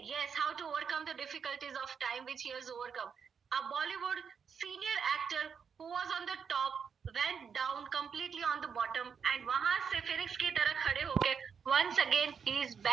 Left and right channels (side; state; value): left; quieter; 6.6 dB